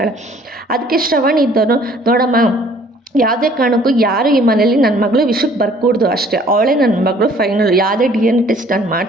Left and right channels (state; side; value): normal; both; correlation 0.57